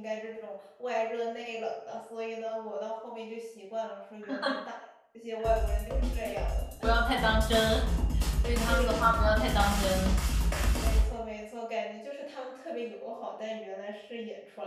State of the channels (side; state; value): both; identical; correlation 1.00